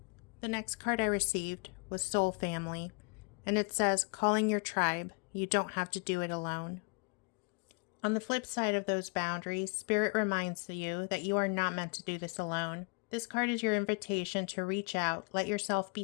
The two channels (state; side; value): quieter; right; 35.0 dB